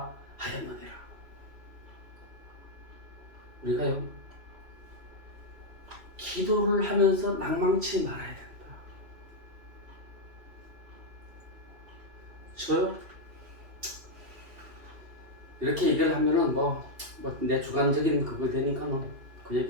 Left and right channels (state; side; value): late; left; 2.7 ms